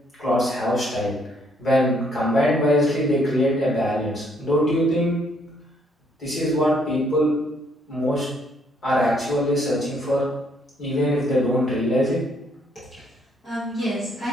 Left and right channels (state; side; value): normal; both; correlation 0.69